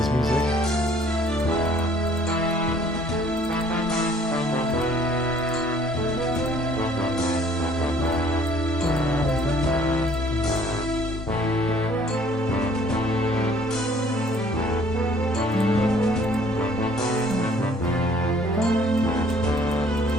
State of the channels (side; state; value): both; normal; correlation 0.58